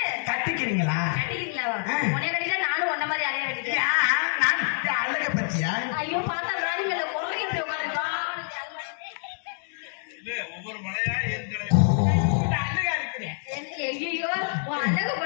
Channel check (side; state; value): right; silent; 60 dB below the other